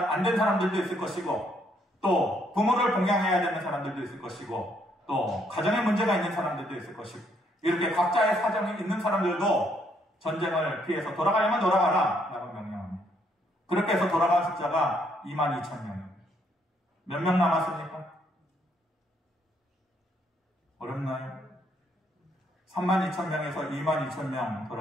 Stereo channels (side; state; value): both; normal; correlation 0.71